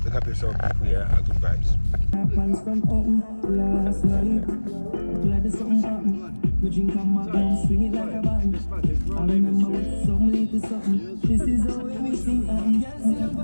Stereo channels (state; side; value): inverted; both; correlation -1.00